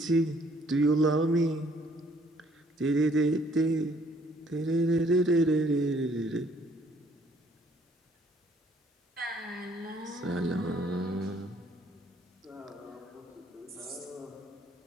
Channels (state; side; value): normal; both; correlation 0.63